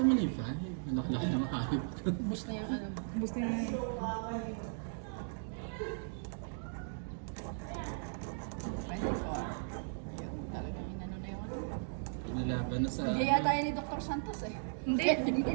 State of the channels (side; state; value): left; silent; digital silence